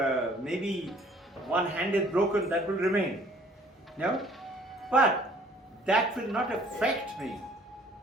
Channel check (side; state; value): both; normal; correlation 0.57